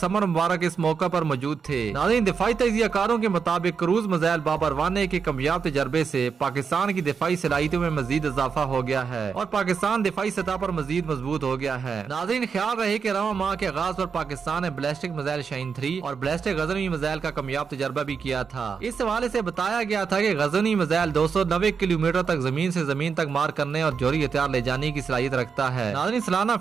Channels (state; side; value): quieter; left; 5.9 dB